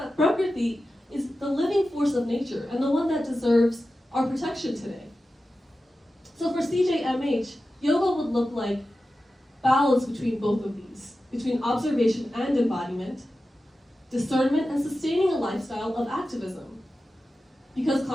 Prakriti is the living force of nature and the one that deserves our protection today. So for CJMH, yoga would look like balance between both of these, between observation and embodiment, discernment and sustaining a lifestyle of activism, because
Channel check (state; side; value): normal; both; correlation 0.93